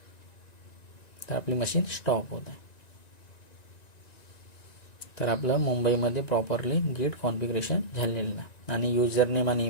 तर आपली मशीन स्टॉप होत आहे. तर आपलं मुंबईमध्ये प्रॉपरली गिट कॉन्फिगरेशन झालेलं आहे आणि युजर नेम आणि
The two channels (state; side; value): late; right; 1.9 ms